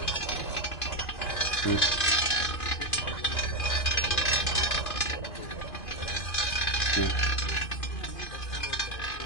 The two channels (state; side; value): late; right; 2.5 ms